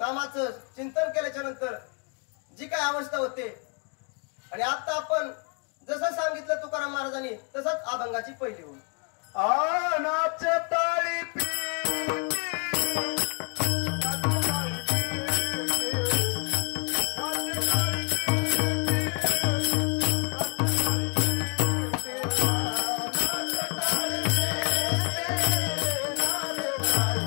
चिंतन केल्याच्या नंतर जी काय अवस्था होते. आणि आता आपण जसं सांगितलं तुकाराम महाराजांनी तसंच अभंगाची पहिली होईल. नाचे टाळी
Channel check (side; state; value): right; quieter; 37.5 dB